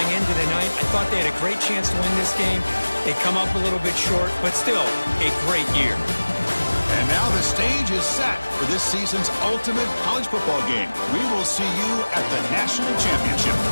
into the night. I thought they had a great chance to win this game. They come up a little bit short, but still a great year. And now the stage is set for this season's ultimate college football game. We will see you at the national championship.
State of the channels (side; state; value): both; inverted; correlation -1.00